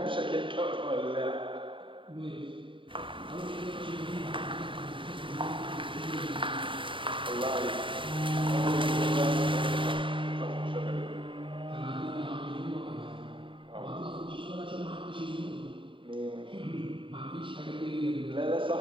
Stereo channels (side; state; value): left; late; 0.25 ms